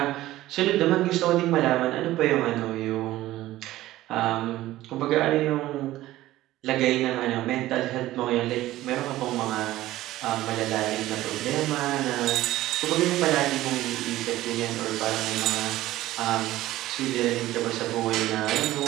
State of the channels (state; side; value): quieter; left; 15.7 dB